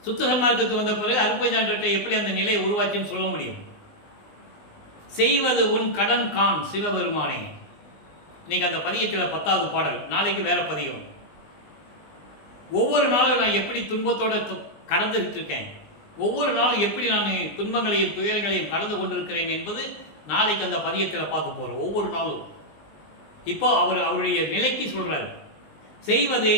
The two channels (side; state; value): right; late; 20 ms